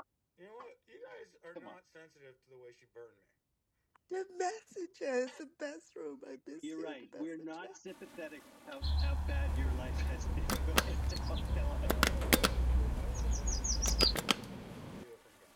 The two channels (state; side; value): identical; both; correlation 1.00